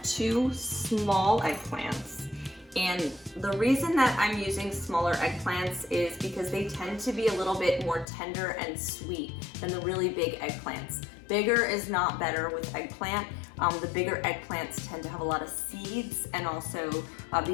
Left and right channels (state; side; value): drops out; right; at 8.1 s